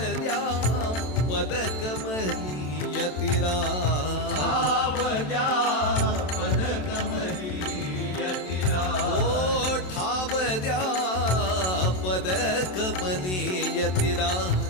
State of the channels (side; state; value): right; late; 27 ms